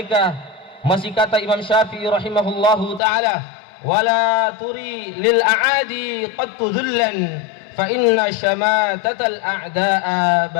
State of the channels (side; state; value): right; drops out; at 3.0 s